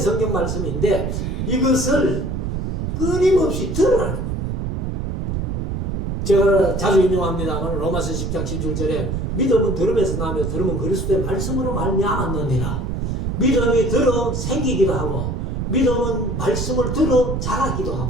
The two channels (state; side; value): noise; right; rumble, 2 dB below the sound